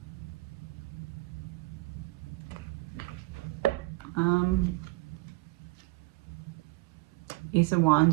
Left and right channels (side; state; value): left; quieter; 22.1 dB